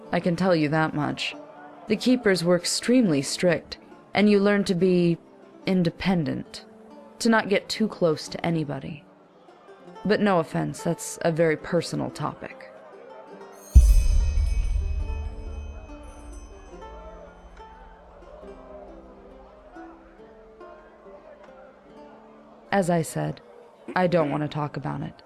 I can tell you that much. The keepers were extremely strict, and you learn to be independent, to not get too close to anybody. But no offense, that's a very personal topic. As I said, I don't want to talk about it.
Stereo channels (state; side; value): identical; both; correlation 1.00